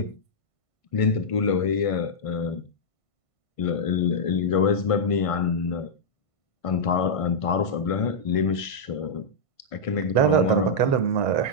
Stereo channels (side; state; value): right; late; 1.5 ms